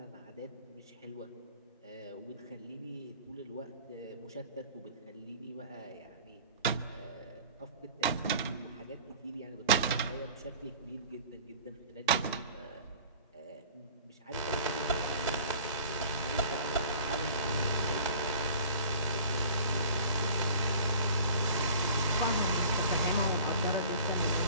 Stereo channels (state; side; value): inverted; both; correlation -0.45